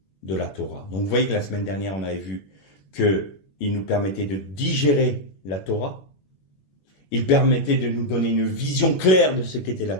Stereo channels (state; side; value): late; right; 21 ms